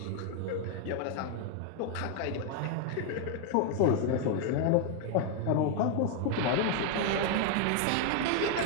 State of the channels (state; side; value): different; both; correlation 0.00